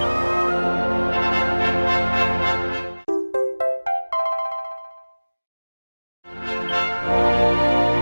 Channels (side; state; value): both; inverted; correlation -1.00